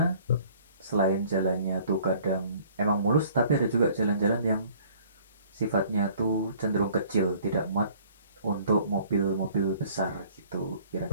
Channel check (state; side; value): inverted; both; correlation -0.54